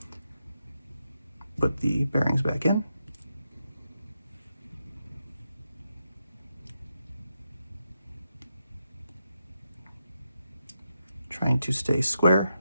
Put the bearings back in. Trying to stay square.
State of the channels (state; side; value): inverted; both; correlation -0.85